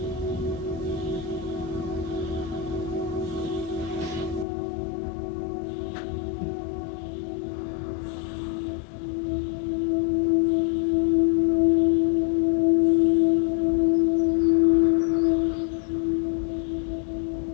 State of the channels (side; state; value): right; drops out; at 4.5 s